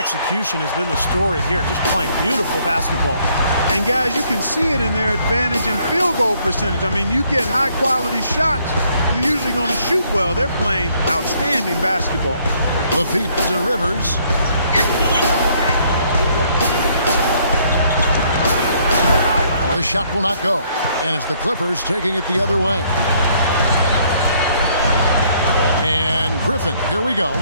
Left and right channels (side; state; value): both; inverted; correlation -0.66